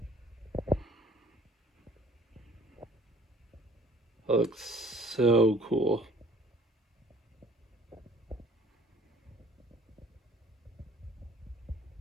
That looks so cool.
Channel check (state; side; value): normal; both; correlation 0.53